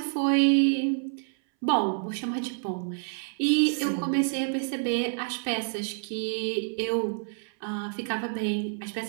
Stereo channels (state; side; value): silent; left; 59 dB below the other